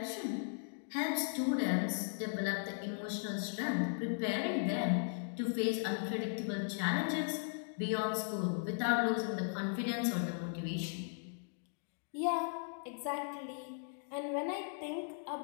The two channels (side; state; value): right; silent; digital silence